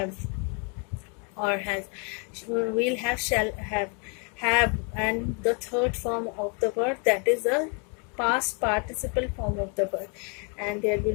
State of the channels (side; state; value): right; quieter; 36.5 dB